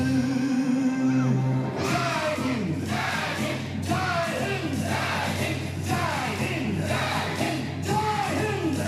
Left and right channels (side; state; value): both; identical; correlation 1.00